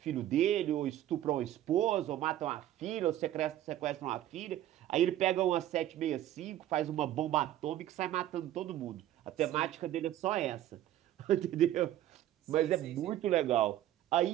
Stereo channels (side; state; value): left; quieter; 12.9 dB